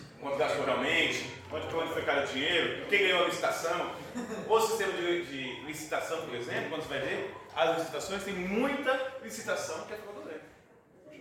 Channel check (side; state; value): both; identical; correlation 1.00